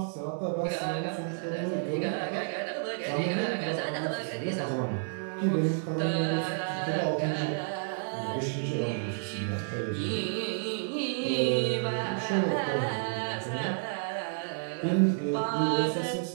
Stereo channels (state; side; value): silent; left; digital silence